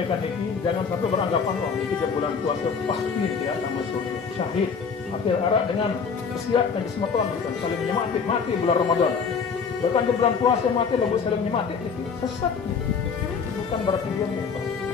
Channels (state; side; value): quieter; right; 5.8 dB